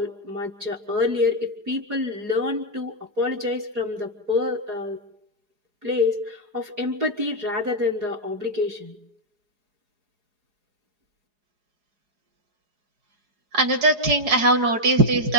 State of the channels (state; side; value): late; left; 4.8 ms